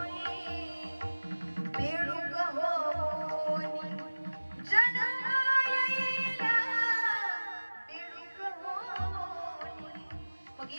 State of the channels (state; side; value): inverted; both; correlation -1.00